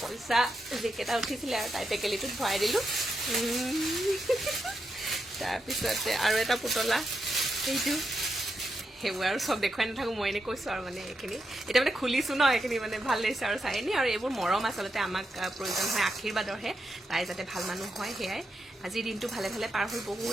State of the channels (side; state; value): both; normal; correlation 0.85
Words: পইচা যিকেইটা উঠিছিলে আৰু তাই টেকেলিটোত ভৰাই দিলোঁ তাৰপিছতে আৰু এটা পুতলা সেইটো সেইবোৰ আৰু চব দেখুৱাই নাথাকোঁ মই এনেই কৈছোঁ আৰু মানে এইখিনি এতিয়া মানে খুলিছোঁ ন এইখিনি মানে ভাল লাগিছে আৰু চাই নি আৰু এইবোৰ মৰম আচলতে আমাক প্ৰয়োজন হয় আশীৰ্বাদৰহে তাই যাতে ভাল মানুহ হয় সেয়াই আজিৰ দিনটো ভালে ভালে পাৰ হৈ